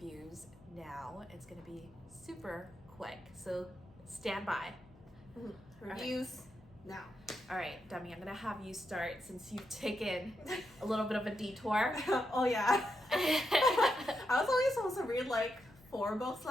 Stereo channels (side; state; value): left; noise; hum, 25 dB below the sound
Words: now. It's gonna be super quick, so stand by. Mm-hmm. Reviews now. All right, Demi, I'm gonna have you start since you've taken a little bit of a detour. Oh yeah. I was only supposed to read 4 books